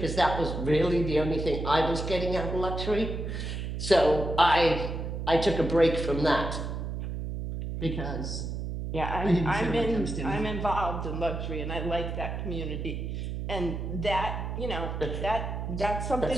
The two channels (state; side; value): noise; right; hum, 4 dB below the sound